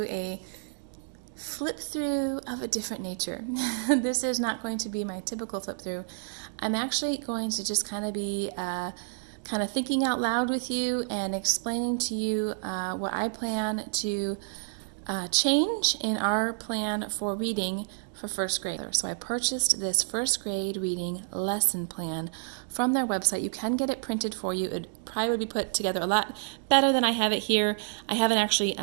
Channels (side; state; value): left; silent; digital silence